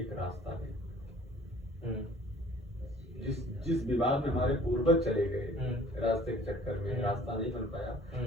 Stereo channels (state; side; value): normal; both; correlation 0.52